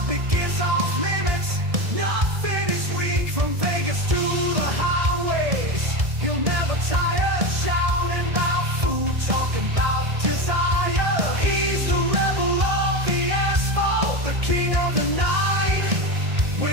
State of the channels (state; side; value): late; left; 1.7 ms